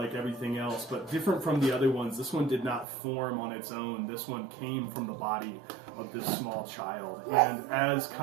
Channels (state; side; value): drops out; left; at 2.9 s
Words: everything else, but different from the other ones. This one did not form on its own. This one came from the body of this small child. And as